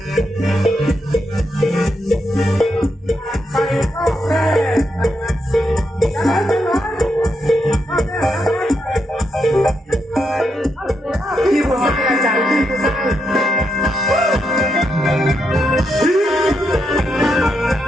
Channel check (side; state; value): both; normal; correlation 0.81